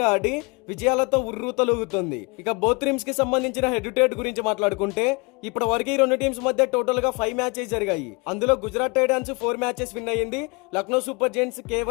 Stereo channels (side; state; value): right; quieter; 29.2 dB